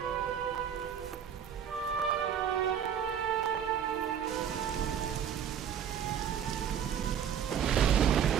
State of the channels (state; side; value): quieter; left; 8.6 dB